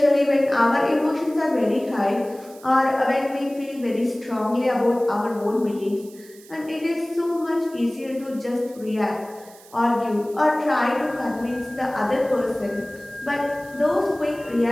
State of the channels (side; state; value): right; noise; hiss, 23 dB below the sound